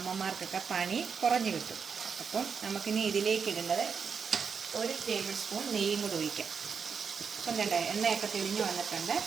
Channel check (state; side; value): quieter; left; 6.1 dB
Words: പണി കുറഞ്ഞു കിട്ടും. അപ്പം നമുക്കിനി ഇതിലേക്ക് ഇടേണ്ടത് 1 ടേബിൾ സ്പൂൺ നെയ്യും കൂടി ഒഴിക്കാം. അപ്പം കണ്ടേ എണ്ണയൊക്കെ തെളിഞ്ഞ് വന്നിട്ടുണ്ട്.